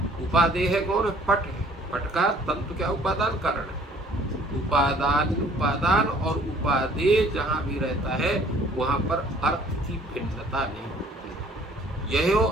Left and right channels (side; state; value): both; normal; correlation 0.56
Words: उपादेय है कौन, पट है, पट का तंतु क्या उपादान कारण है। उपादान और उपादेय जहाँ भी रहता है वहाँ पर अर्थ की भिन्नता नहीं होती। यहो